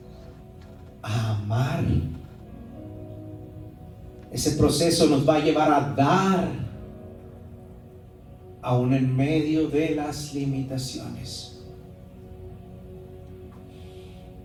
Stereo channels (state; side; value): identical; both; correlation 1.00